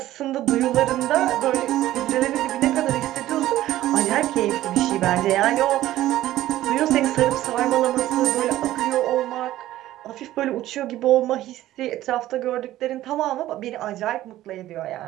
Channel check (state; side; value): quieter; left; 14.5 dB